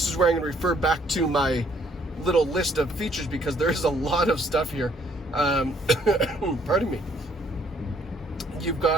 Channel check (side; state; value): both; normal; correlation 0.65